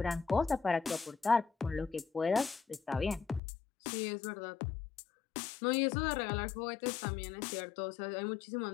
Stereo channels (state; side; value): drops out; right; at 3.4 s